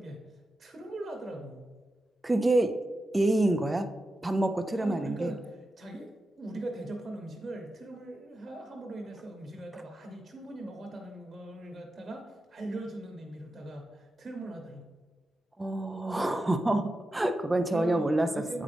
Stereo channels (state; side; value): normal; both; correlation 0.90